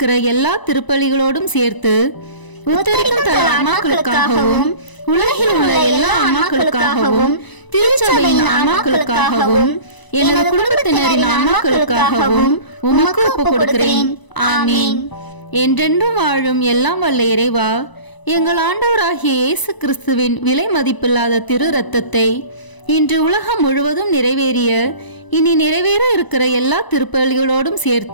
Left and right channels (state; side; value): late; right; 1.0 ms